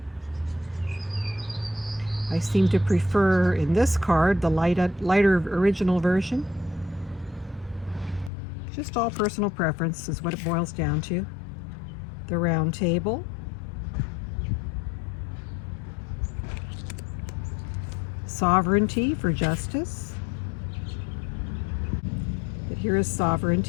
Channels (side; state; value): right; drops out; at 8.3 s